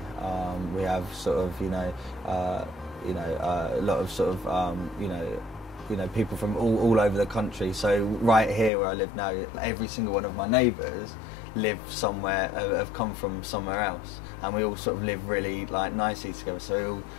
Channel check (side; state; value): right; drops out; at 8.7 s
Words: We have sort of a lot of sort of people from all over the country. So right here where I live now, every single one of my neighbours live somewhere, have come from somewhere else, and we all sort of live really nicely together. So we all